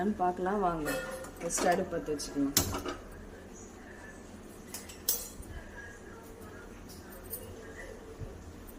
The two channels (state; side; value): identical; both; correlation 1.00